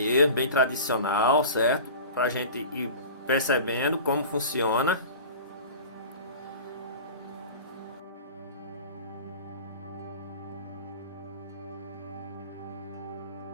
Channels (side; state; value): both; inverted; correlation -0.36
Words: bem tradicional, certo? Pra gente ir percebendo como funciona.